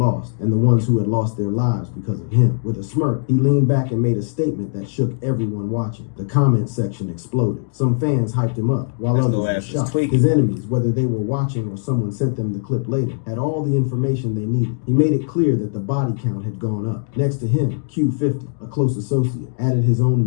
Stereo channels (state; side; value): silent; right; digital silence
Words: and the ones who had lost their lives because of him. With a smirk, he leaned back and made a statement that shook everyone watching. The comment section exploded. Some fans hyped him up, while others were shocked. His enemies, whether they were watching or someone sent them the clip later, had all the information they needed. He made it clear that the body count had gone up. Next to him, Q50, a close associate, added his own